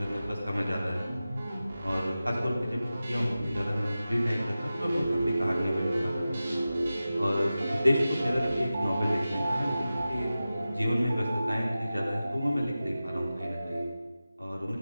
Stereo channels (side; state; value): both; inverted; correlation -0.95